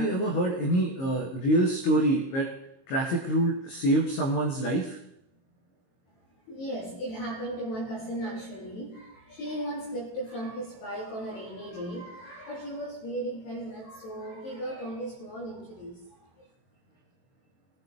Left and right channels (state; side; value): late; right; 23 ms